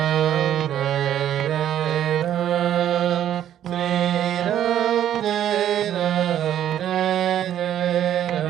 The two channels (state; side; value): quieter; left; 10.9 dB